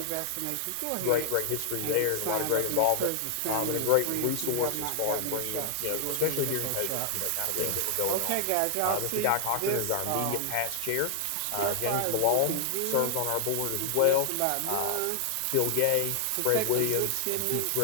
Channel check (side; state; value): both; different; correlation 0.00